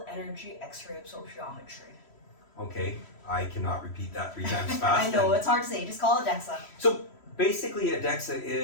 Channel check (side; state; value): right; late; 3.1 ms